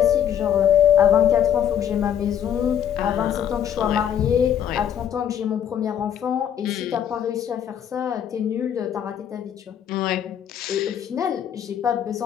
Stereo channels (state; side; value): quieter; right; 9.4 dB